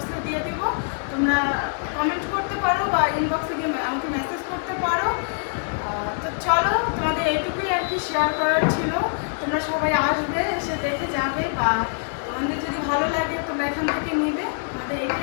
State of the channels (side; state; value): right; silent; digital silence